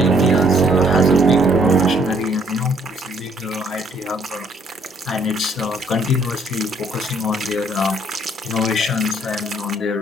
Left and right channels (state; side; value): normal; both; correlation 0.64